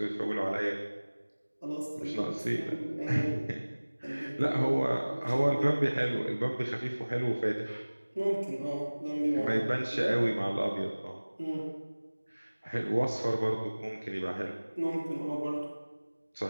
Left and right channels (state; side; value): inverted; both; correlation -1.00